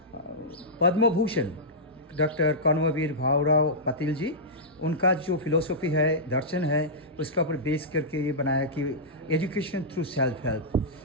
Padma Bhushan, Dr. Karmavir Bhaurav Patil ji. उनका जो philosophy है, दर्शन है, उसका ऊपर base करके ये बनाया कि education through self help.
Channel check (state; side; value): normal; both; correlation -0.13